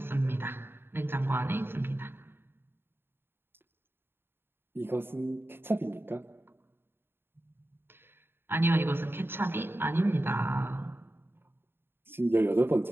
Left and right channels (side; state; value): left; late; 0.11 ms